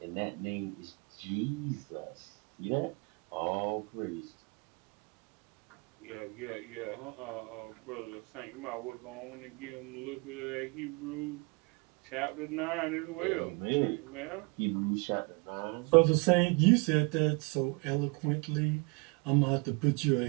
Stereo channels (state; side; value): quieter; left; 30.2 dB